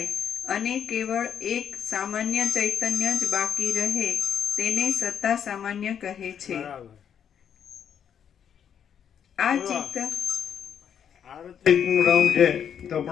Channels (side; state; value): right; quieter; 8.4 dB